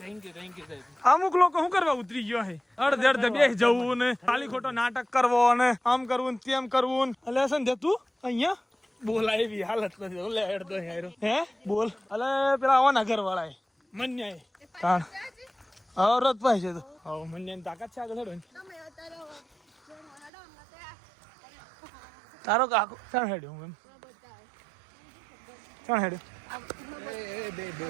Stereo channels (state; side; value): drops out; left; at 20.3 s